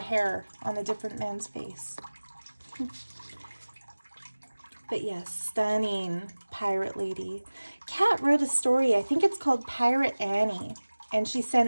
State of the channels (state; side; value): inverted; both; correlation -1.00